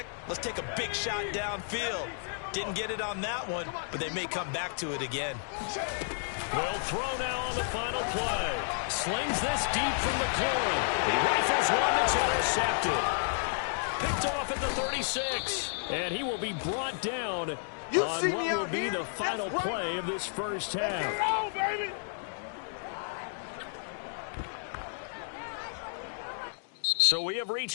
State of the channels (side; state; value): right; silent; digital silence